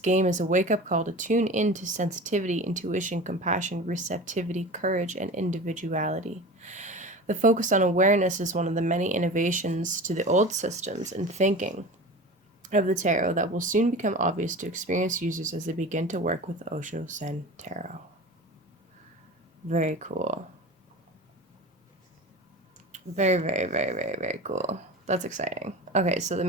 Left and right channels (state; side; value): normal; both; correlation 0.33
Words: is a wake-up call to tune into sensitivity, intuition, compassion, receptivity, courage, and individuality. The focus on awareness is one of the many innovations to the old systems and thinking of the tarot that will soon become obvious to experienced users as they begin to work with the Osho Zen Tarot. Very cool. Very, very, very, very, very cool. That's exciting. Okay, so the